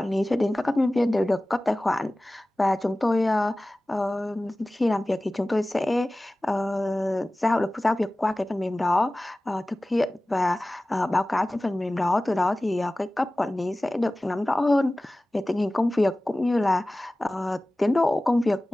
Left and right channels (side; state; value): both; normal; correlation 0.97